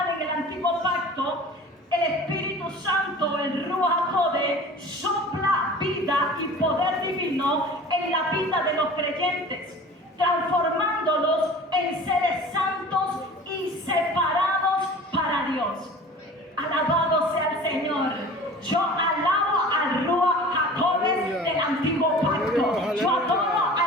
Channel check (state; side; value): normal; both; correlation 0.41